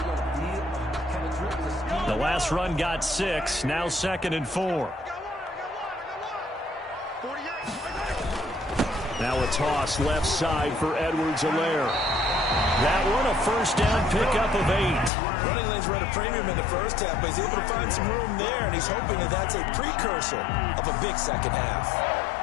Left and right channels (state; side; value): drops out; right; at 15.1 s